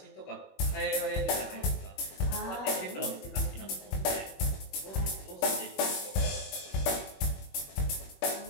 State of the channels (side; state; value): right; late; 21 ms